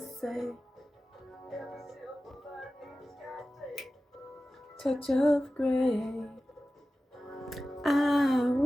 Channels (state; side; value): normal; both; correlation 0.95